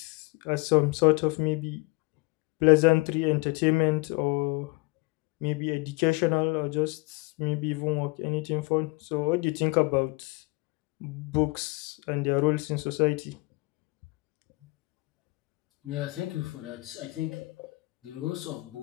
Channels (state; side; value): quieter; right; 25.1 dB